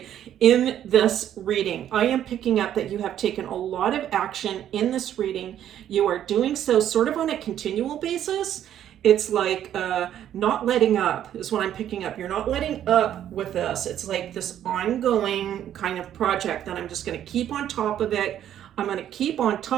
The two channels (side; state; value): left; quieter; 10.8 dB